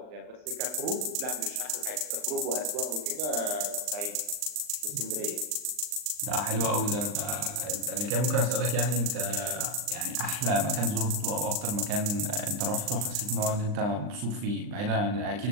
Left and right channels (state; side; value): late; left; 39 ms